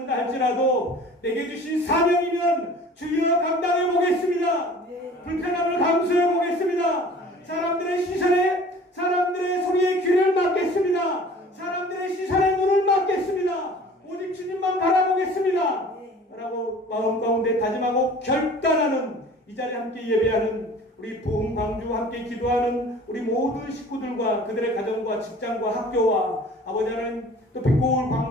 할지라도 내게 주신 사명이면 주여 감당해 보겠습니다. 불편함을 감수해 보겠습니다. 사람들의 시선에 사람들의 소리에 귀를 막겠습니다. 사람들의 시선에 눈을 막겠습니다. 오직 주님만 바라보겠습니다. 라고 마음 가운데 다짐하고 결단하는 이 자리에 함께 예배하는 우리 부흥 광주와 함께 기도하는 우리 모든 식구들과 그들의 가정과 직장과 학교와 아버지 하나님 또 빛고울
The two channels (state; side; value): normal; both; correlation 0.46